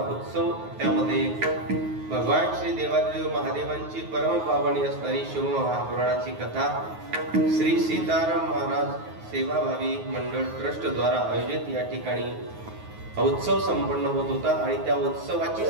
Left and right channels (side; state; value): left; late; 9.4 ms